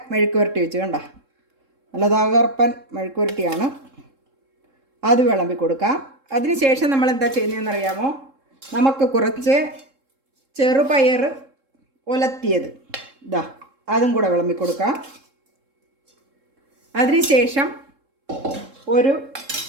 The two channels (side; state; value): left; late; 3.7 ms